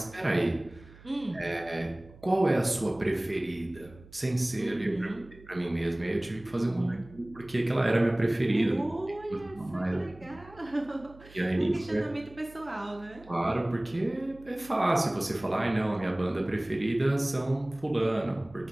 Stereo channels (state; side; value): noise; right; hum, 22 dB below the sound